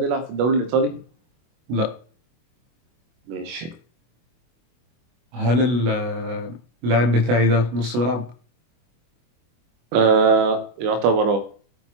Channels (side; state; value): left; late; 24 ms